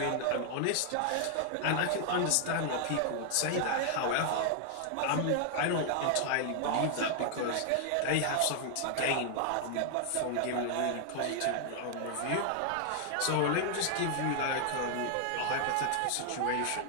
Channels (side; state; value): both; different; correlation 0.00